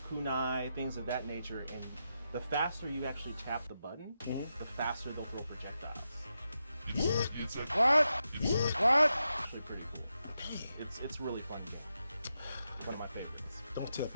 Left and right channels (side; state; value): both; inverted; correlation -0.87